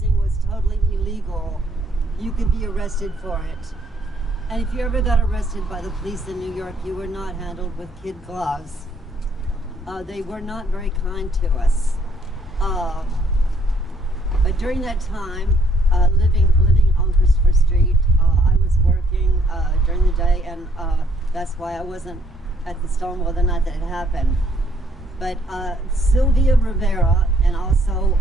was totally illegal. You could be arrested for it. And if you ever got arrested by the police in New York, you were not handled with kid gloves. They were not very kind to us. But during that time, living on Christopher Street, I was working during the day, and that's why I wasn't at the Stonewall the night that it happened. But Sylvia Rivera and also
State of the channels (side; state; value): both; normal; correlation 0.66